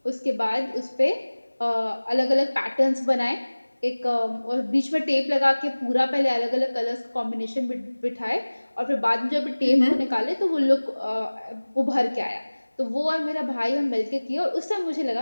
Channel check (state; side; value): inverted; both; correlation -1.00